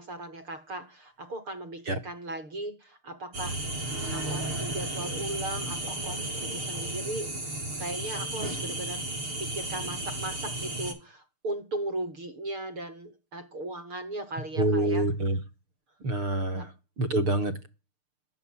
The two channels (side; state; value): left; late; 6.7 ms